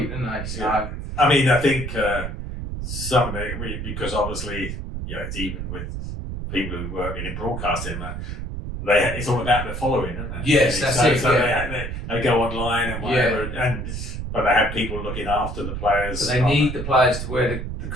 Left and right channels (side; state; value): right; noise; rumble, 6 dB below the sound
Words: don't they? So, I mean, I think some of it, because obviously, it's even with people who work in broadcasting, it's all about the following, isn't it? Yes, that's it. So they go online and whatever, but they have people looking after the players. But they need the players to wear the